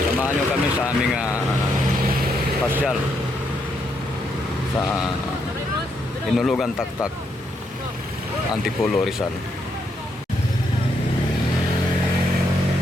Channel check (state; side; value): normal; both; correlation 0.77